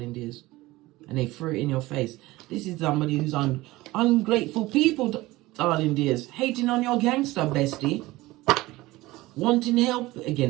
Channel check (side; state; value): left; quieter; 19.0 dB